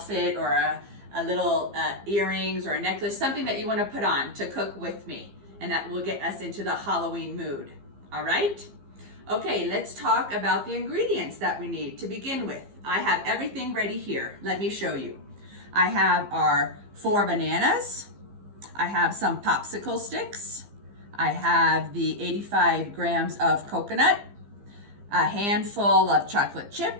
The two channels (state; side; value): late; left; 15 ms